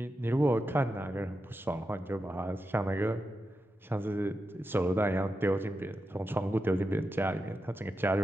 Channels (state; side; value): normal; both; correlation 0.88